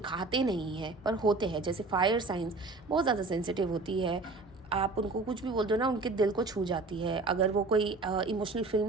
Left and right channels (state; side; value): quieter; left; 3.6 dB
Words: नहीं हैं पर होते हैं। जैसे फायर साइंस बहुत ज़्यादा सेंसिटिव होती है, आप उनको कुछ भी बोल दो ना, उनके दिल को छू जाती है। अगर वो कोई इमोशनल